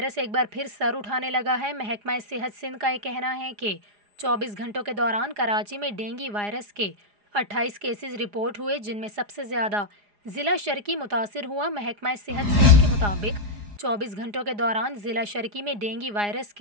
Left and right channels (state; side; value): late; left; 4.9 ms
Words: एक बार फिर सर उठाने लगा है। महकमा सेहत सिंध का ये कहना है कि 24 घंटों के दौरान कराची में डेंगू वायरस के 28 केसेस रिपोर्ट हुए, जिनमें सबसे ज़्यादा ज़िला शर्की मुतासिर हुआ। महकमा सेहत सिंध के मुताबिक 24 घंटों के दौरान ज़िला शर्की में डेंगू वायरस